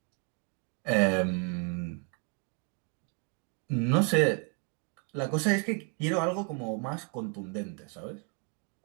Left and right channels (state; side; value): quieter; left; 33.2 dB